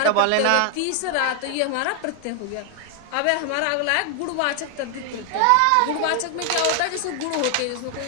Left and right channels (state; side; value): different; both; correlation 0.00